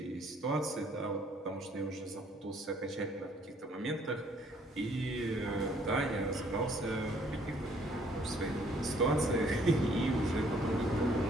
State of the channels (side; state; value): both; normal; correlation 0.63